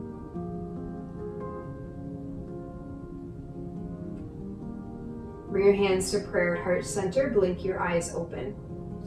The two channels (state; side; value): identical; both; correlation 1.00